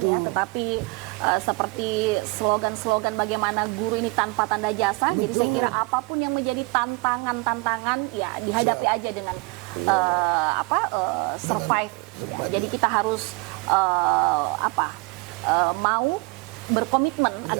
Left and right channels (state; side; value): quieter; left; 27.3 dB